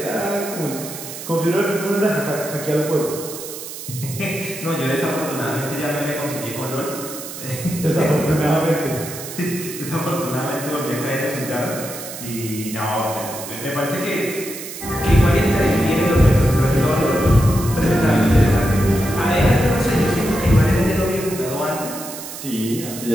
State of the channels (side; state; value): right; noise; hiss, 10 dB below the sound